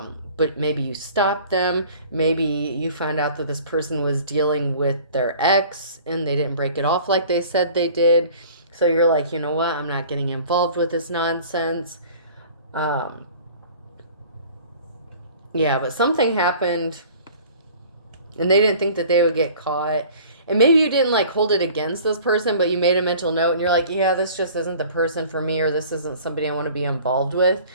maybe you stopped them. Maybe you found out that this person was dealing with their ex and they didn't break it off like they said they did. So you're like, you know what? I'm not getting involved with this nonsense. Yeah, but something happened and they didn't think that they would get caught. And maybe you didn't like hold it against this person, but you made a mental note and you're like, yeah, this just isn't the person for me, or this isn't somebody I want to be involved with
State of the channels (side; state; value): both; inverted; correlation -0.47